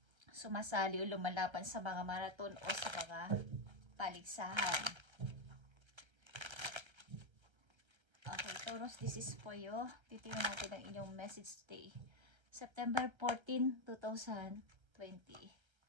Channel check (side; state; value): left; late; 1.3 ms